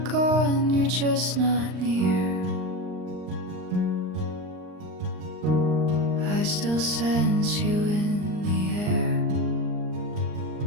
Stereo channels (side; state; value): left; late; 39 ms